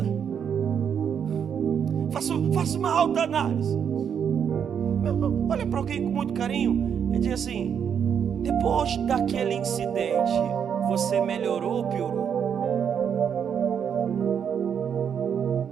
Faça uma alta análise. Olha para alguém com muito carinho Ele diz assim: depois daquele incidente, você melhorou ou piorou?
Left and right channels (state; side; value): quieter; left; 7.8 dB